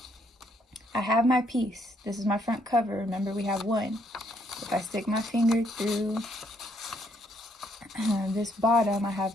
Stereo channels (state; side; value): normal; both; correlation 0.70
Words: I have my piece. This is my front cover. Remember, we have 1. If I stick my finger through this bottom, I have